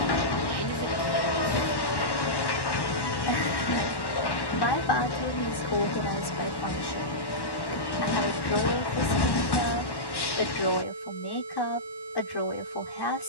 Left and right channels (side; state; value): right; late; 1.1 ms